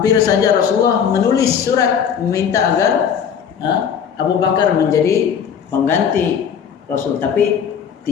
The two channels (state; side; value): quieter; right; 7.7 dB